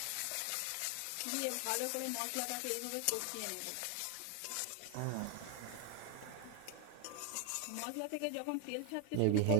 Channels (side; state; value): both; different; correlation 0.01